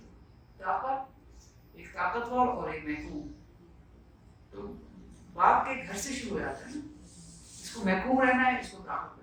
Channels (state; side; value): identical; both; correlation 1.00